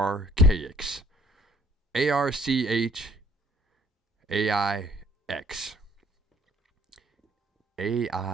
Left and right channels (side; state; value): both; normal; correlation 0.60